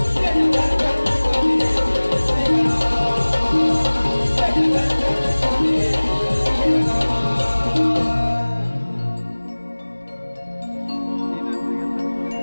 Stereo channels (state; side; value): inverted; both; correlation -1.00